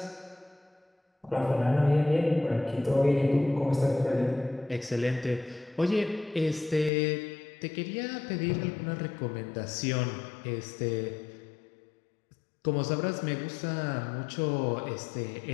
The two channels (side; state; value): right; drops out; at 6.9 s